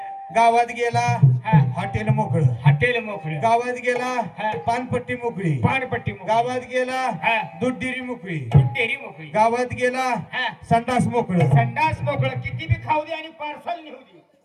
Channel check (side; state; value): both; identical; correlation 1.00